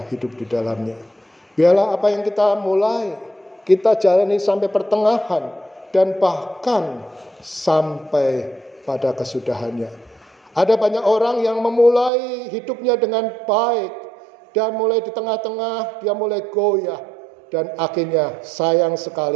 hidup di dalamnya. Biarlah apa yang kita mulai, kita jalani sampai pertengahan dan bahkan sampai pada kesudahannya. Ada banyak orang yang memulai hidupnya dengan baik, dan mulai di tengah-tengah dia mulai goyah, dan akhirnya sayang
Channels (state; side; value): drops out; left; at 12.1 s